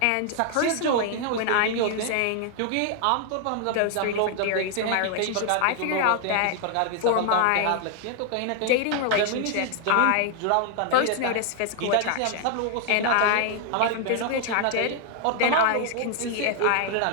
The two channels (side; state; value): both; different; correlation 0.00